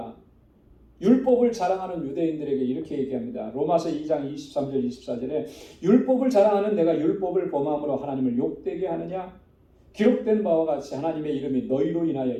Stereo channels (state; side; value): identical; both; correlation 1.00